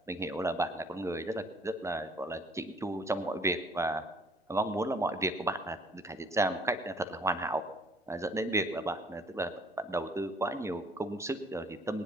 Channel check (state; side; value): normal; both; correlation 0.57